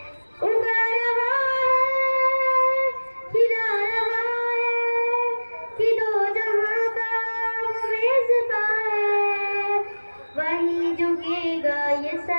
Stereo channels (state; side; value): inverted; both; correlation -1.00